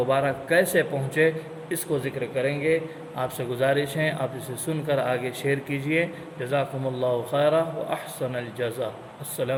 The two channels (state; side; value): identical; both; correlation 1.00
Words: کیسے پہنچے اس کو ذکر کریں گے۔ آپ سے گزارش ہے آپ اسے سن کر آگے شیئر کیجئے۔ جزاکم اللہ خیرا و احسن الجزا۔